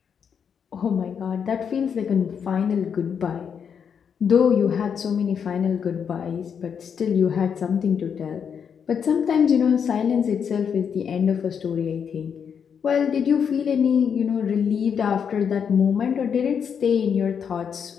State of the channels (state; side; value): quieter; right; 7.2 dB